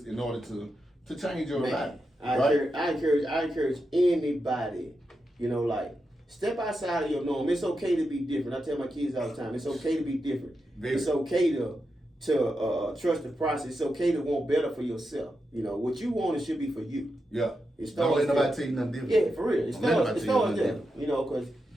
in order to change your life. I encourage anybody, you know, like, step outside of your norm. It's okay to be different. I tell my kids all the time, it's okay to be different. It's okay to trust the process. It's okay to want better for yourself. You know, what you want, it should be for you. Yeah. Don't let nobody tell you nothing different. Yeah, for real. It starts there. You know, because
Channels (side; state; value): both; normal; correlation 0.87